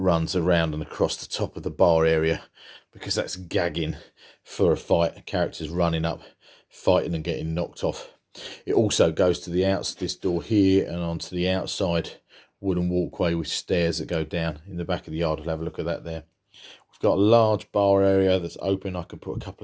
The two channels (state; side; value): identical; both; correlation 1.00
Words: around and across the top of the bar area, because that's gagging for a fight, characters running up, fighting and getting knocked off. It also goes to the outside, this door here, and onto the outside wooden walkway with stairs that go down in the back of the yard. We'll have a look at that there. We've got a large bar area that's open. I can put a couple